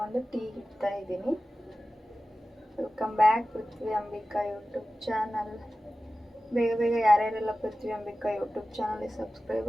ಟೀ ಇಡ್ತಾ ಇದ್ದೀನಿ. ವೆಲ್ಕಮ್ ಬ್ಯಾಕ್ ಪೃಥ್ವಿ ಅಂಬಿಕಾ ಯೂಟ್ಯೂಬ್ ಚಾನಲ್. ಬೇಗ ಬೇಗ ಯಾರ್ಯಾರೆಲ್ಲ ಪೃಥ್ವಿ ಅಂಬಿಕಾ ಯೂಟ್ಯೂಬ್ ಚಾನಲ್ಗೆ ಸಬ್ಸ್ಕ್ರೈಬ್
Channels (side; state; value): both; normal; correlation 0.95